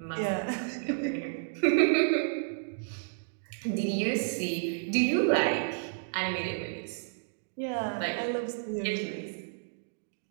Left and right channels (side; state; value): left; silent; digital silence